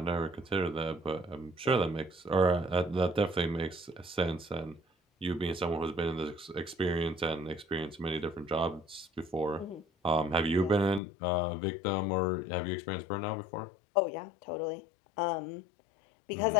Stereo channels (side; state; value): right; drops out; at 11.0 s